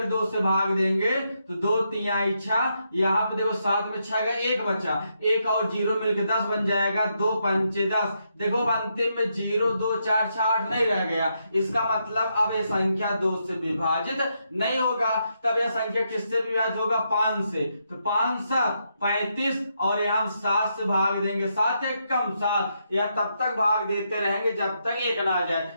2 से भाग देंगे तो 2 3 6, यहाँ पे देखो 7 में 6 का 1 बचा, 1 और 0 मिलकर 10 बन जाएगा, 2 5 10। देखो अंतिम में 0 2 4 6 8 नहीं रह गया। इसका मतलब अब ये संख्या 2 से विभाजित नहीं होगा। तब यह संख्या किससे विभाजित होगा? 5 से। तो 5 7 35, और यहाँ 7 से भाग देंगे, 7 1 कम 7, या तब तक भाग देते रहेंगे जब तक 1 ना आ जाए।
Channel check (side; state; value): both; inverted; correlation -0.80